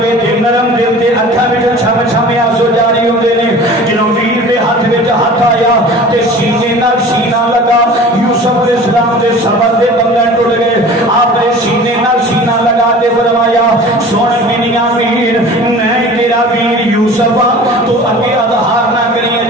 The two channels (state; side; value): normal; both; correlation 0.42